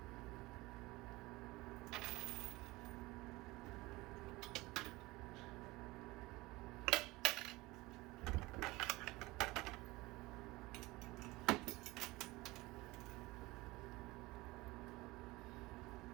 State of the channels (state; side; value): quieter; left; 21.1 dB